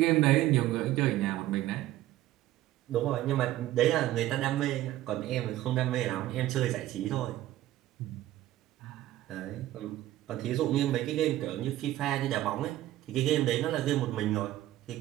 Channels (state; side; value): quieter; left; 14.5 dB